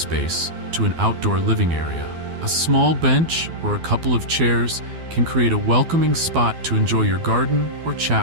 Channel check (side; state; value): left; late; 12 ms